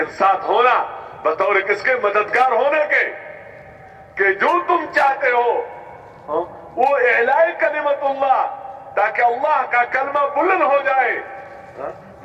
ساتھ ہونا بطور کس کے؟ مددگار ہونے کے، کہ جو تم چاہتے ہو وہ اعلاء کلمت اللہ، تاکہ اللہ کا کلمہ بلند ہو جائے۔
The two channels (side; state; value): both; identical; correlation 1.00